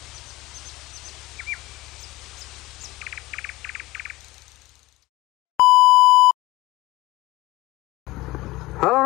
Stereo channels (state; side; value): quieter; right; 19.3 dB